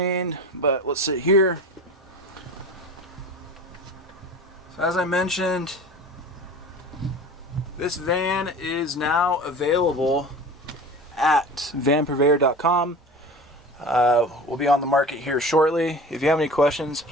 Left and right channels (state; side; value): normal; both; correlation 0.36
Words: but let's sit here. So as I mentioned, this van is now available at vanpurveyor.com. We'll be on the market here shortly. If you have any questions,